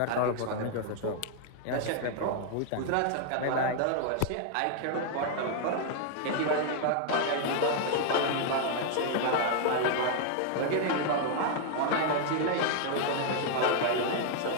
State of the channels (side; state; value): both; different; correlation 0.00